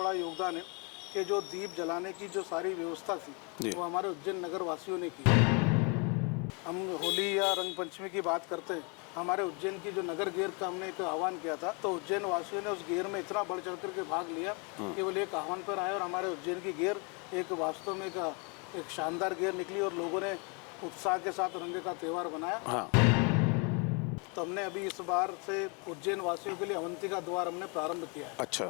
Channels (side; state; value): right; quieter; 33.4 dB